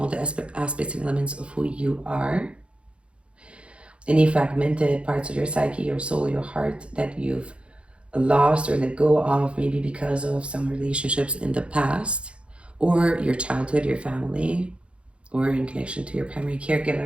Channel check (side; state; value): left; late; 0.059 ms